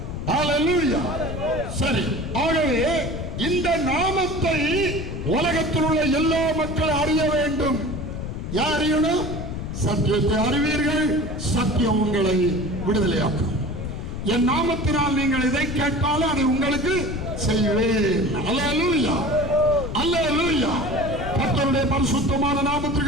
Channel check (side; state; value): left; noise; rumble, 6 dB below the sound